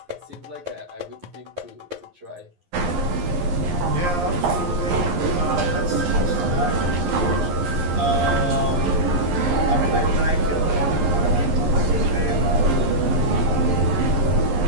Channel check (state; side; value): late; left; 11 ms